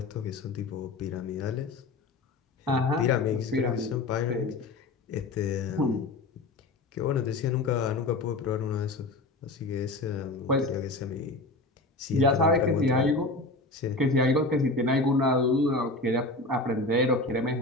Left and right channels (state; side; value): quieter; right; 3.0 dB